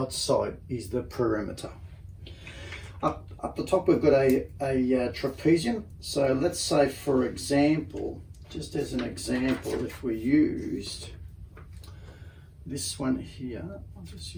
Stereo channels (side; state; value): both; identical; correlation 1.00